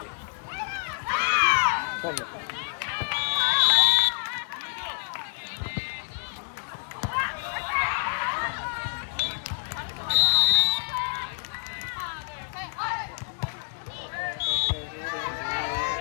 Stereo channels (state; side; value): silent; right; digital silence